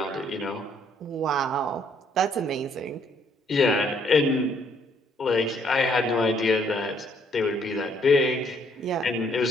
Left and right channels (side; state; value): both; normal; correlation 0.66